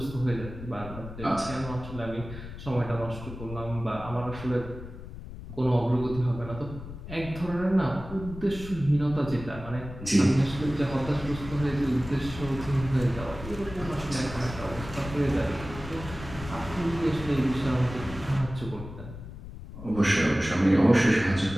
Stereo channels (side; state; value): left; noise; rumble, 12 dB below the sound